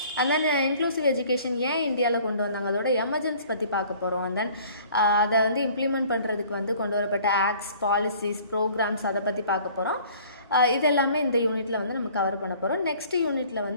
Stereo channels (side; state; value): both; inverted; correlation -0.52